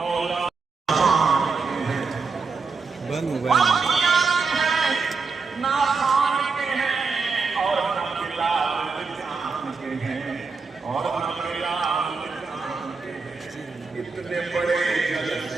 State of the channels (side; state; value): left; quieter; 4.7 dB